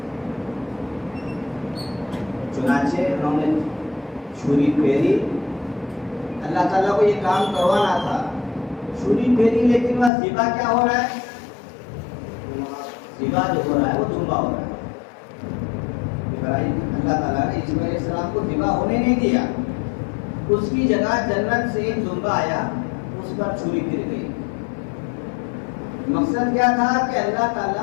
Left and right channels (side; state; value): right; drops out; at 10.1 s